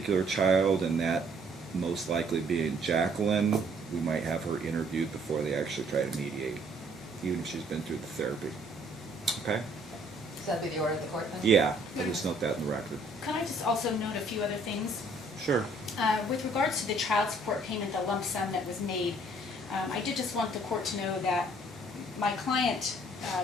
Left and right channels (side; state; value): both; normal; correlation 0.61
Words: child, and that most likely being Jacqueline, we might have her interviewed before they actually try to mediate, even if she's been through the therapy. Okay? So that'd be the order of the court then? Yeah, I'll just note that in the record. Can I just also note a few other things? Sure. With regards to the child support payment, the lump sum that was made, I did just want the court to know that my client